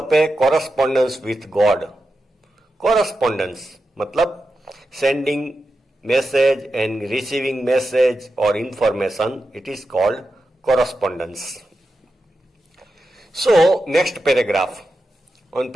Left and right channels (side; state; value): both; normal; correlation 0.89